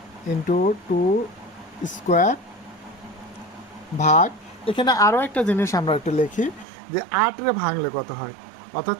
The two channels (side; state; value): left; drops out; at 6.7 s